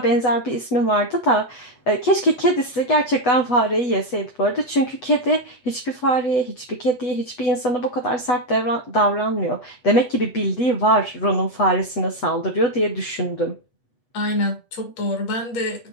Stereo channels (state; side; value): late; right; 8.1 ms